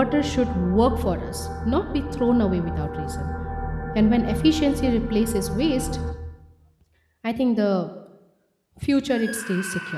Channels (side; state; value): both; identical; correlation 1.00